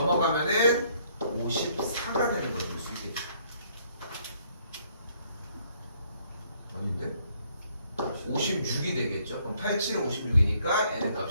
54가 되는 걸 볼 수 있겠죠. 아닌데? 56이 되겠죠. 그럼 87은 56이니까 n의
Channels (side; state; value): both; inverted; correlation -0.66